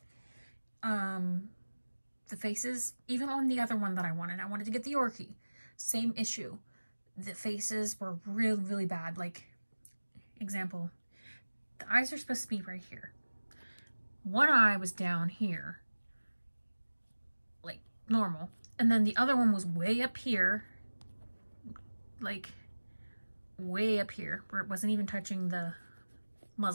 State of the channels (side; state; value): both; inverted; correlation -1.00